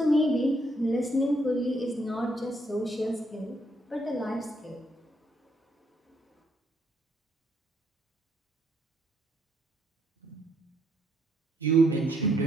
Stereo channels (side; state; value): both; normal; correlation 0.73